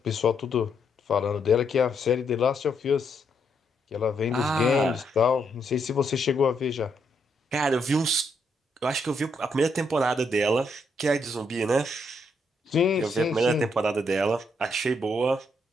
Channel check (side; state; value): both; normal; correlation 0.76